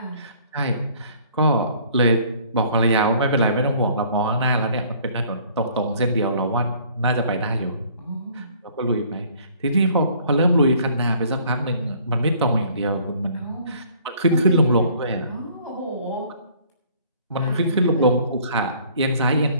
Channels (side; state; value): both; inverted; correlation -0.57